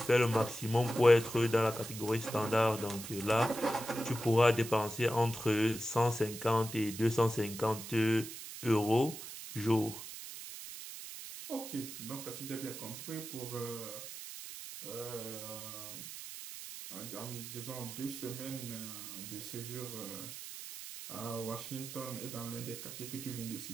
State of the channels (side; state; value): right; noise; hiss, 10 dB below the sound